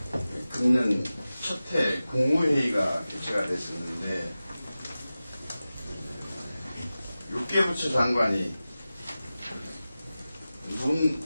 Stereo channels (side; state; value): both; inverted; correlation -0.95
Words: 금년 첫해 국무회의가 개최가 됐었는데 6개 부처 장관이